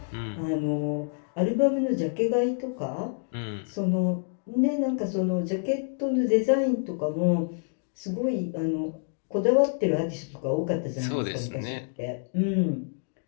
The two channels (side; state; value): right; silent; digital silence